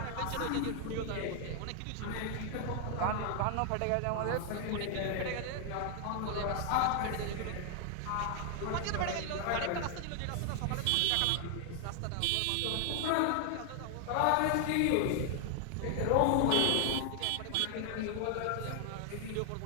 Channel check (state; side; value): different; both; correlation 0.00